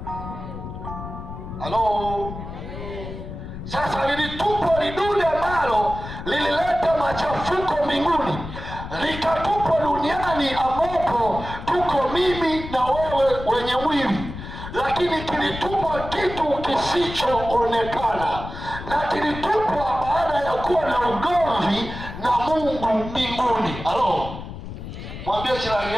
Halo? Sasa lilitupwa lidude ambalo lilileta machafuko mbinguni, likatupwa duniani ambapo tuko mimi na wewe wenye mwili. Lakini kilitupwa kitu kisichoonekana, na kilitupwa baada ya kuwa na ugomvi na Mungu mbinguni. Halo? Mwambie jirani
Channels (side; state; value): left; noise; rumble, 10 dB below the sound